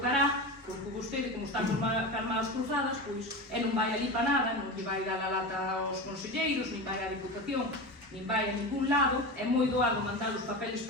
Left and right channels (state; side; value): normal; both; correlation 0.24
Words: porque vostede, como está con as cruzadas, pois non vai ali para nada, non lle vai dar a lata aos conselleiros, nin vai á Diputación, nin vai a ningún lado. É moi doado mandar os papeles